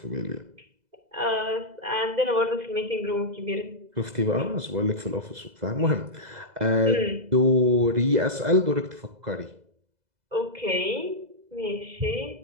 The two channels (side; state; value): left; late; 2.0 ms